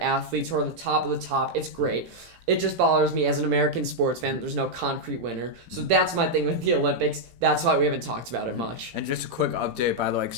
athletes who are the top of the top, it's great. It just bothers me as an American sports fan that there's no concrete winner. So that's my thing with the Olympics. That's why we haven't talked about it much. And just a quick update, by the way, because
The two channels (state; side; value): late; left; 18 ms